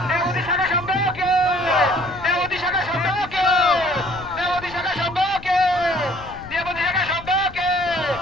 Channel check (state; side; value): noise; left; rumble, 16 dB below the sound